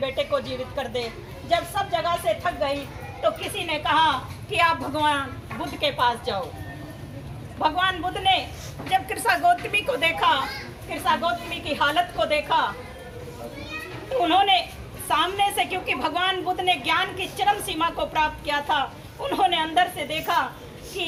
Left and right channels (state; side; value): identical; both; correlation 1.00